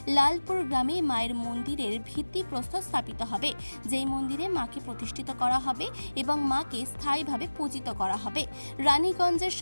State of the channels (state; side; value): inverted; both; correlation -1.00